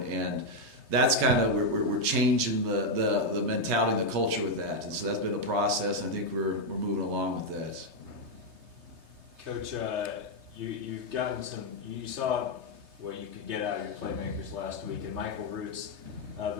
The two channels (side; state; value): left; late; 3.2 ms